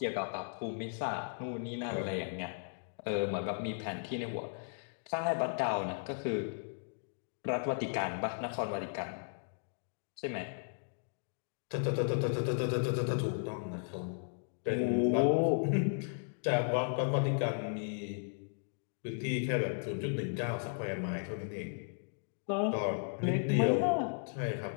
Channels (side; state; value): right; silent; digital silence